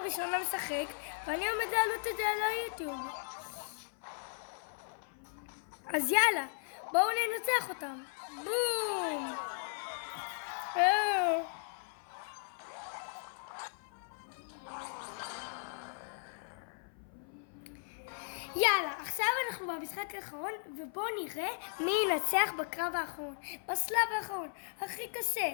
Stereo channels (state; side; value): silent; right; 53 dB below the other